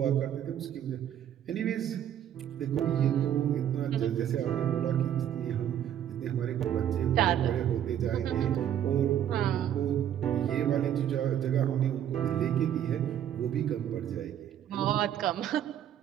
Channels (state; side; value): quieter; left; 10.3 dB